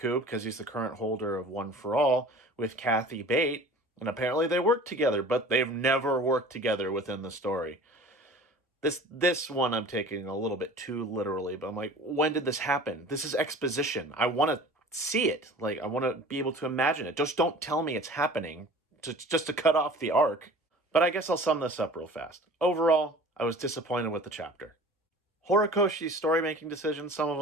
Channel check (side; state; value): both; normal; correlation 0.43